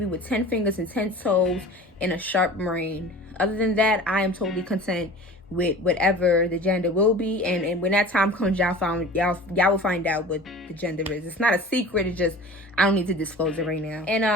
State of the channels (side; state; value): both; normal; correlation 0.40